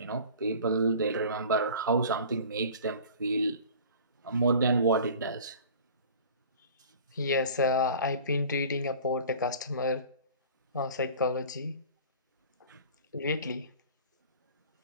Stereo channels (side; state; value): both; inverted; correlation -0.43